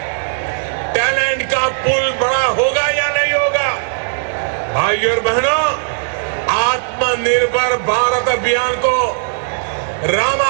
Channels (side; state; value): left; silent; digital silence